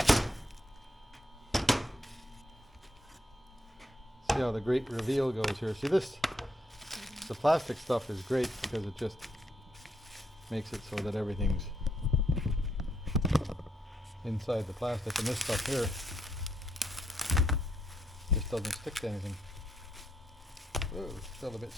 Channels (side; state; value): both; normal; correlation 0.77